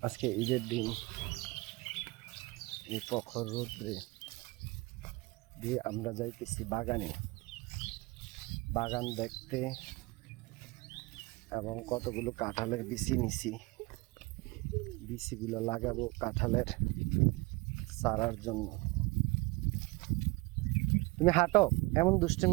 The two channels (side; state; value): left; quieter; 23.9 dB